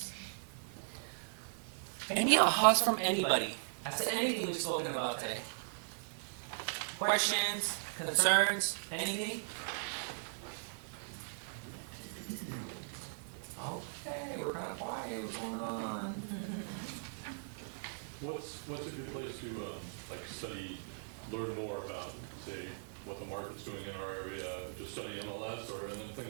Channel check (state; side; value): silent; left; 52 dB below the other